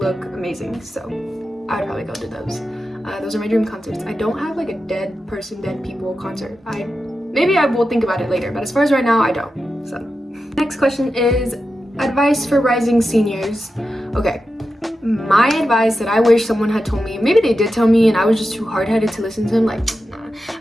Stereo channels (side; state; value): both; normal; correlation 0.90